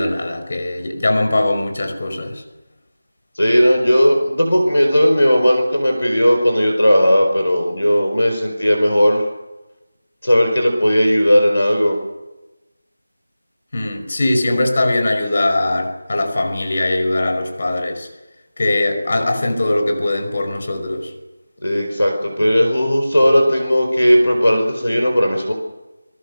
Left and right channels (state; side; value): inverted; both; correlation -0.97